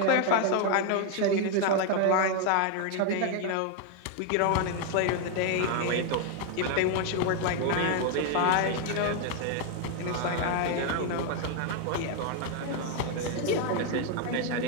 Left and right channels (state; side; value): different; both; correlation 0.01